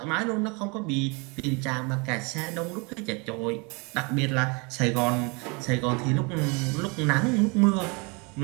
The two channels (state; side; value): quieter; left; 30.3 dB